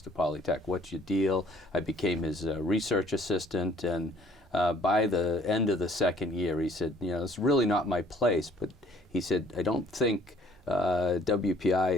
Polytech. What's your deal? I became his research assistant, and by the end of the second year, he said, it's really not my place, but he said, I don't think WPI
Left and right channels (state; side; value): normal; both; correlation 0.58